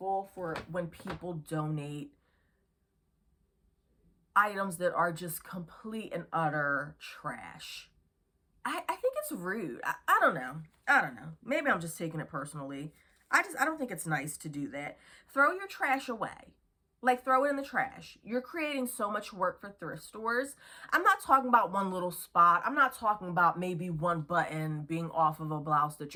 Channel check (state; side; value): identical; both; correlation 1.00